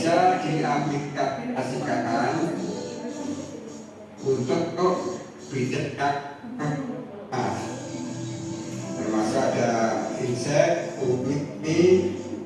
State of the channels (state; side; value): identical; both; correlation 1.00